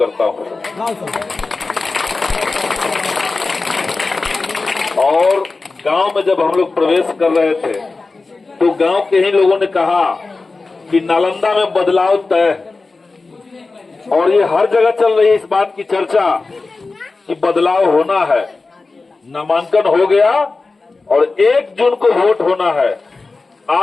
हूं। और गांव में जब हम लोग प्रवेश कर रहे थे तो गांव के ही लोगों ने कहा कि नालंदा में बदलाव तय, और ये हर जगह चल रही है इस बात की चर्चा कि बदलाव होना है। नामांकन हो गया और 1 जून को वोट होना है।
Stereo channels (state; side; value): quieter; right; 3.8 dB